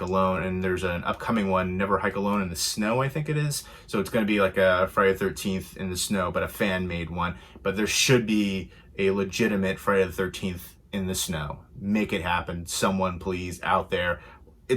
Alone, and there's an upcoming one, Never Hike Alone in the Snow, I think it is. So it's going to be like a Friday the 13th in the snow, but a fan-made one. But there should be a legitimate Friday the 13th in the snow. Make it happen, someone please, out there.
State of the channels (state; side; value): identical; both; correlation 1.00